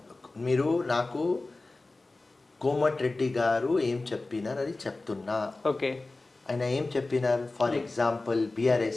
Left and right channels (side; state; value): right; quieter; 3.2 dB